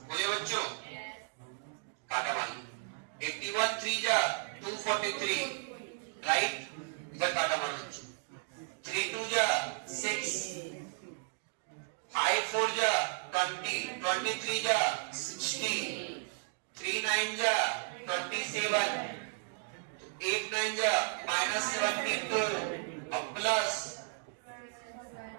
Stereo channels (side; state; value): left; silent; 55 dB below the other